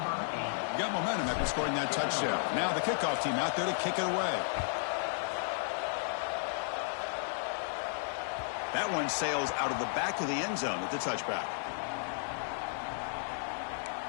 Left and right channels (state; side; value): silent; right; 55 dB below the other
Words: Got momentum after scoring that touchdown. Now the kickoff team out there to kick it away. That one sails out of the back of the end zone with the touchback.